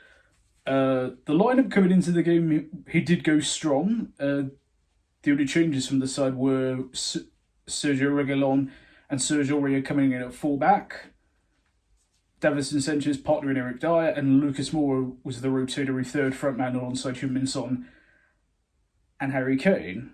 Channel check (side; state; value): both; identical; correlation 1.00